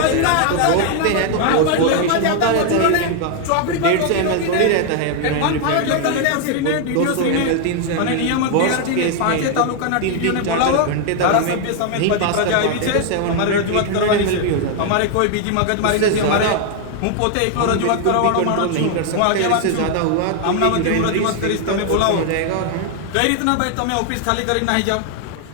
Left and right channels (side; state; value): both; different; correlation 0.00